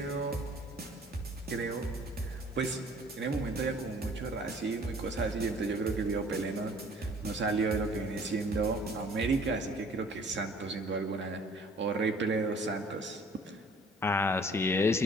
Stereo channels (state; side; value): normal; both; correlation 0.53